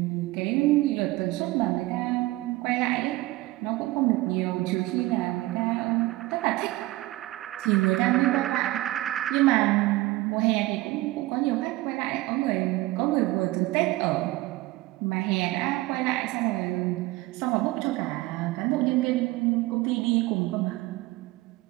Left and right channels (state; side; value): quieter; left; 18.9 dB